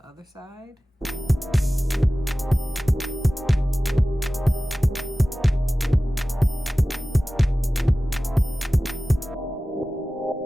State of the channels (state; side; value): normal; both; correlation 0.96